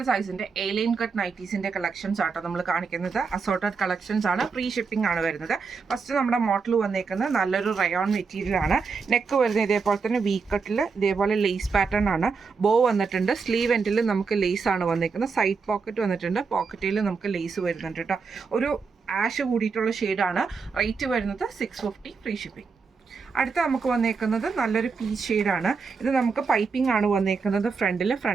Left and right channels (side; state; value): left; quieter; 5.1 dB